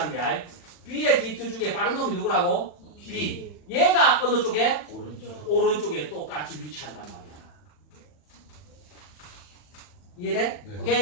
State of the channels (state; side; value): late; right; 40 ms